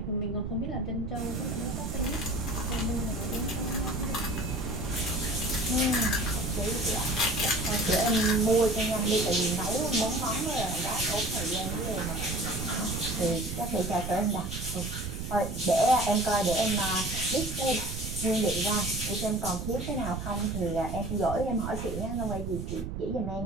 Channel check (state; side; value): noise; right; rumble, 6 dB below the sound